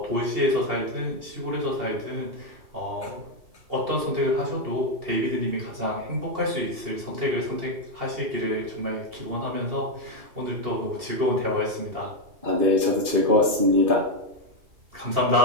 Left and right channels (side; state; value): left; late; 2.8 ms